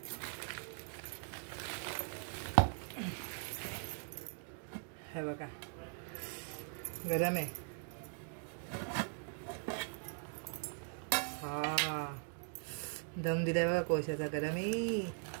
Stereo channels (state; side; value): silent; left; 51 dB below the other